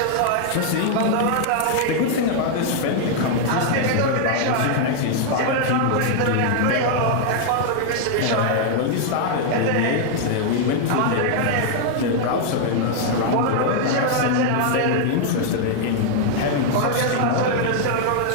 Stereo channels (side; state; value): both; different; correlation 0.00